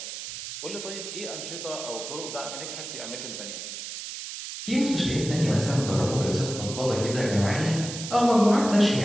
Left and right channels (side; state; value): right; noise; hiss, 8 dB below the sound